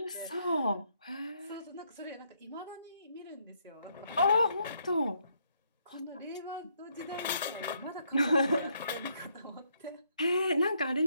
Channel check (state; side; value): inverted; both; correlation -0.73